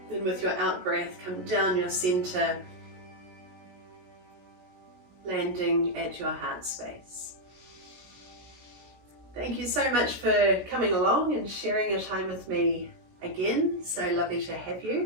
Then with your out breath, come down your center, landing at your heart space. Thank you so much for coming along and sharing your time with me again. So lovely to have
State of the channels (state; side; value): late; left; 17 ms